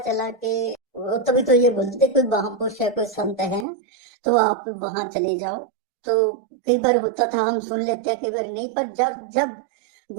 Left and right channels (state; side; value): drops out; left; at 3.7 s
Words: कि तभी तो ये बोलते थे कोई महापुरुष है, कोई संत है, तो आप वहां चले जाओ। तो कई बार होता था हम सुन लेते हैं, कई बार नहीं, पर जब जब